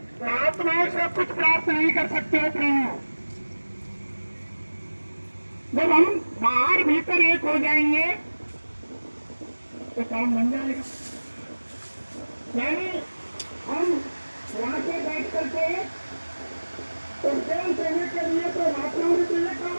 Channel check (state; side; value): inverted; both; correlation -1.00